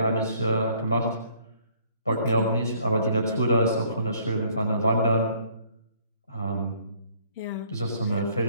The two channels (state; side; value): inverted; both; correlation -0.61